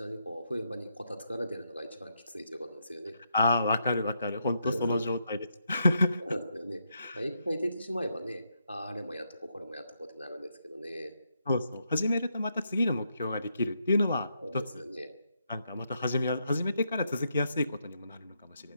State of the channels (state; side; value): inverted; both; correlation -0.80